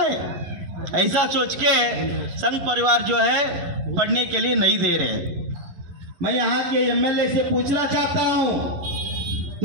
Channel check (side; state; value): left; late; 11 ms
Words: ऐसा सोच के संघ परिवार जो है पढ़ने के लिए नहीं दे रहे। मैं यहाँ के एमएलए से पूछना चाहता हूँ,